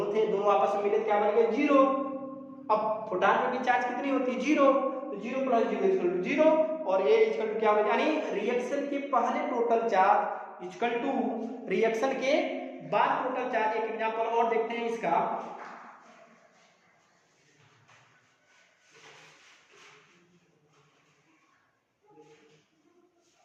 थे, दोनों आपस में मिले तो क्या बन गया? 0। अब फोटॉन में भी चार्ज कितनी होती है? 0। तो 0 प्लस 0 इक्वल टू 0 और ये इक्वल टू क्या हो गया? यानी रिएक्शन के पहले total charge equal to reaction के बाद टोटल चार्ज। एक एग्जांपल और देखते हैं इसका।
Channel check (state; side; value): identical; both; correlation 1.00